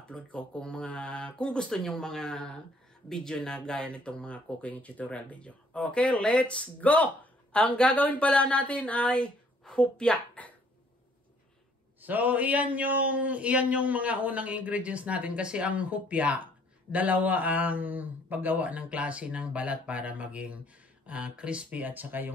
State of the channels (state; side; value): normal; both; correlation 0.62